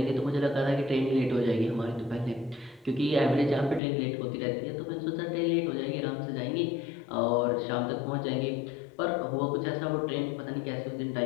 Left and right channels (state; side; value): drops out; right; at 3.8 s